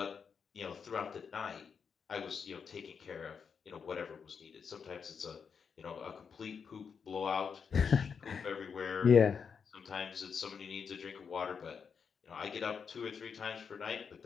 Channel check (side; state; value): right; quieter; 6.3 dB